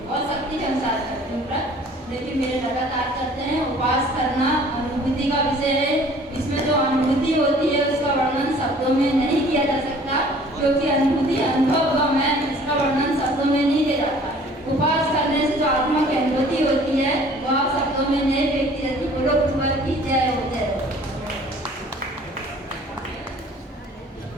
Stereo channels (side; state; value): both; normal; correlation 0.52